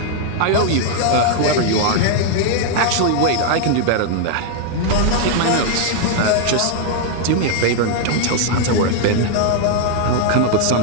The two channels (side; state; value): both; different; correlation 0.00